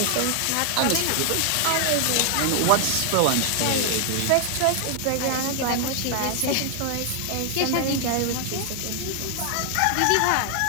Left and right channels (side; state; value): both; different; correlation 0.00